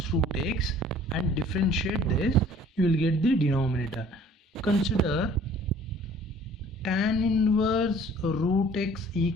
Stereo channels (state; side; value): normal; both; correlation 0.52